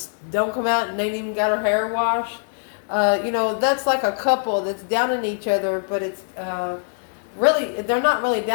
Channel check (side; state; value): right; silent; digital silence